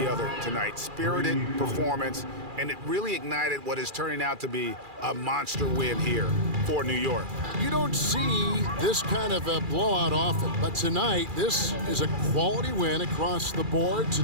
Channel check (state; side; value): late; left; 2.4 ms